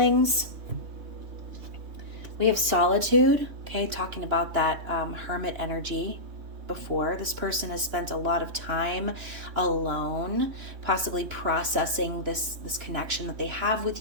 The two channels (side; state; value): left; late; 3.1 ms